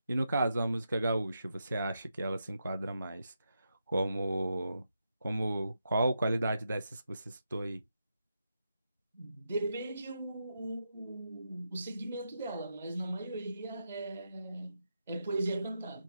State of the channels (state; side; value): inverted; both; correlation -0.85